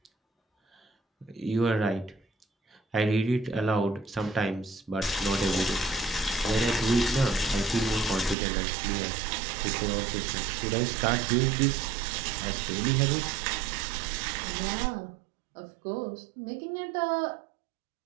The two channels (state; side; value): drops out; left; at 8.3 s